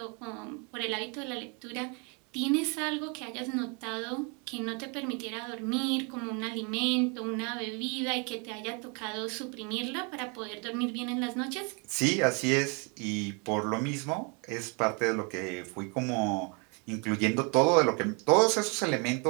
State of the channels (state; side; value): quieter; left; 33.8 dB